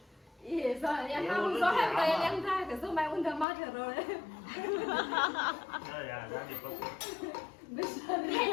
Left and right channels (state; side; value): drops out; right; at 3.5 s